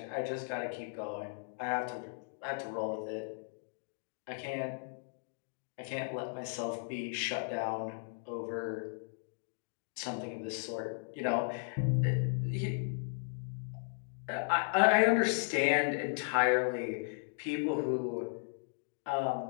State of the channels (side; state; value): right; silent; digital silence